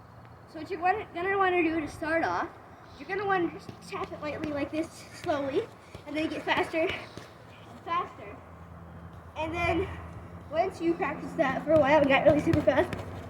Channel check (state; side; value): identical; both; correlation 1.00